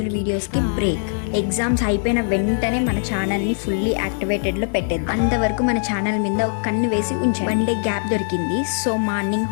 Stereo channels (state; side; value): silent; right; digital silence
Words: వీడియోస్ కి బ్రేక్. ఎగ్జామ్స్ అయిపోయిన వెంటనే మన ఛానల్ ని ఫుల్లీ యాక్టివేటెడ్ లో పెట్టేది. అంతవరకు మన ఛానల్ మీద ఒక కన్ను వేసి ఉంచాను. 1 డే గ్యాప్ దొరికింది. So morning